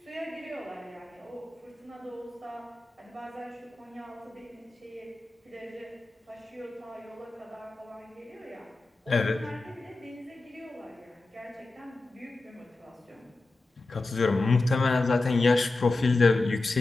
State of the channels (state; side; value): quieter; right; 3.2 dB